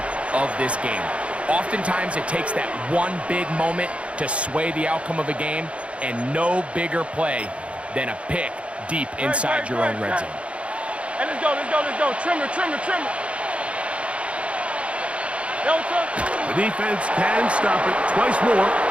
of this game. Oftentimes, it takes that one big moment to sway the outcome of a game, and no bigger play than a pick deep inside your own red zone. Hey, let's go. Trimmer. The defense can stop it twice more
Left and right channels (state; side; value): late; left; 0.061 ms